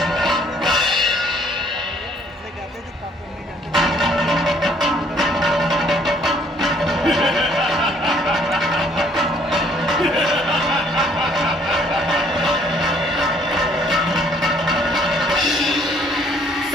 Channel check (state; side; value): normal; both; correlation 0.62